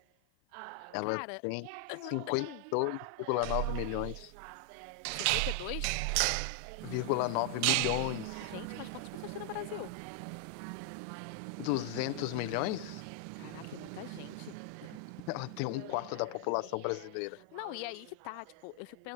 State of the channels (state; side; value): different; both; correlation 0.00